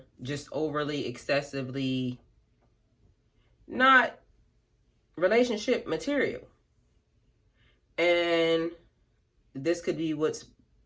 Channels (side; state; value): both; identical; correlation 1.00